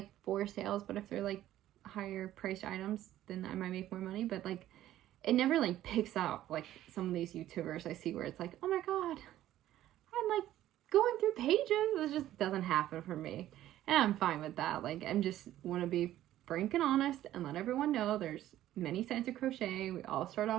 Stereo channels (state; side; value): quieter; left; 13.4 dB